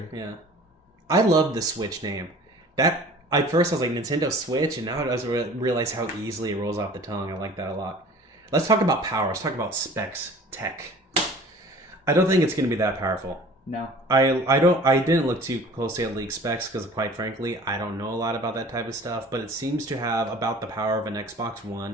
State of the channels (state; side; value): normal; both; correlation 0.46